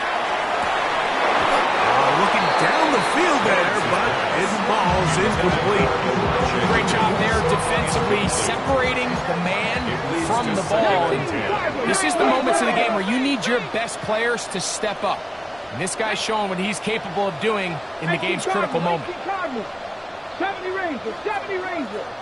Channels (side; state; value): both; identical; correlation 1.00